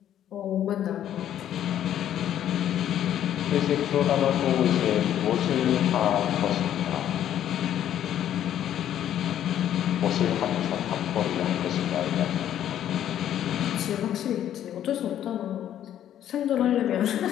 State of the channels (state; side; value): quieter; right; 10.9 dB